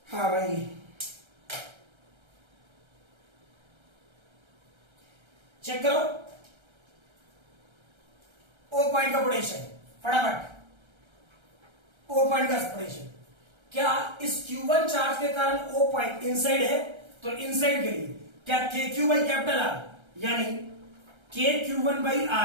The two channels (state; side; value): late; left; 1.3 ms